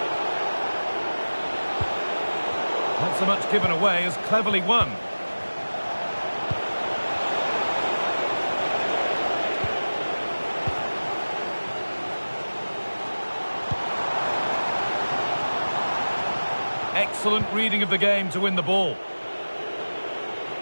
Not so much given away as cleverly won. Excellent reading of the game to win the ball.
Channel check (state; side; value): inverted; both; correlation -1.00